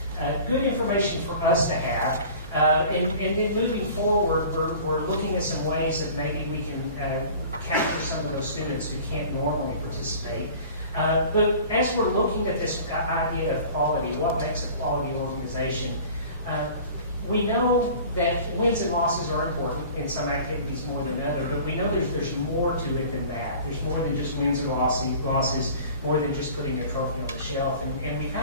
Good information for us to have. And then moving forward, we're looking at some ways that maybe we can capture some of those students who can't normally participate. But as we're looking at this idea of quality, what makes a quality organization, we know that wins and losses are important in some activities more than others, but we know there's more to it than that. There's more than just wins and losses, more than just putting a trophy on the shelf. And we've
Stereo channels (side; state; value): both; inverted; correlation -0.44